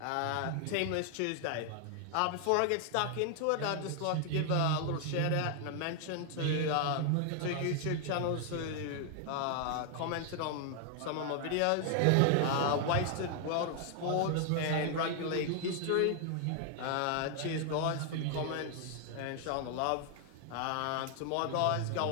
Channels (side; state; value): both; different; correlation 0.00